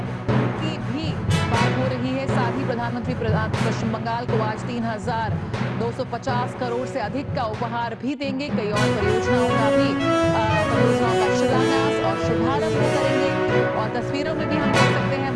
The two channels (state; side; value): identical; both; correlation 1.00